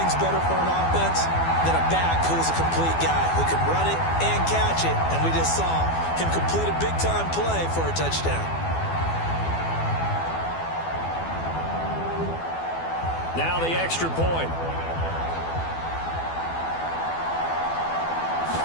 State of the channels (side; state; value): right; late; 12 ms